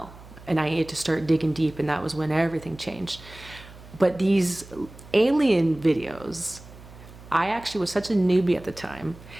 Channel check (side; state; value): right; noise; hum, 19 dB below the sound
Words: and I needed to start digging deep, and that was when everything changed. But these alien videos, I actually was such a newbie at the time.